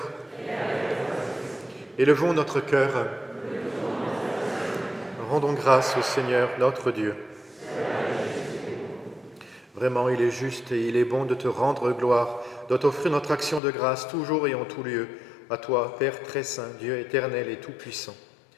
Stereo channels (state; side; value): drops out; right; at 13.6 s